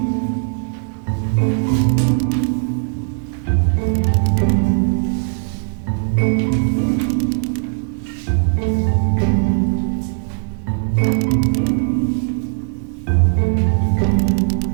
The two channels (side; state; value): left; silent; digital silence